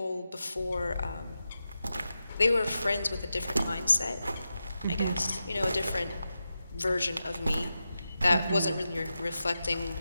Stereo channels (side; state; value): both; inverted; correlation -0.90